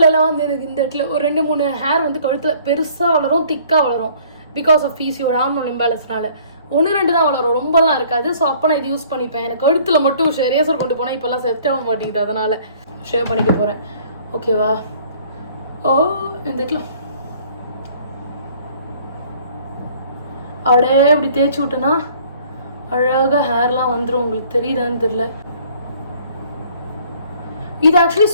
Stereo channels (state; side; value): inverted; both; correlation -0.56